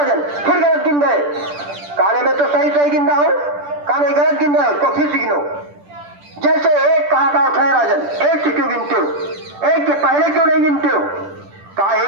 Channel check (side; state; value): left; late; 10 ms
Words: फिर गलत गिन रहे। कहने में तो सही सही गिन रहा हूं। कहने गलत गिन रहे हो तो फिर से गिनो। जैसे एक कहा था है राजन, एक से क्यों गिनते हो, एक के पहले क्यों नहीं गिनते हो। कहा